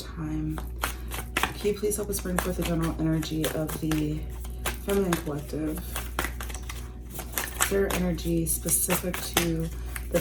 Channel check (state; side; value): identical; both; correlation 1.00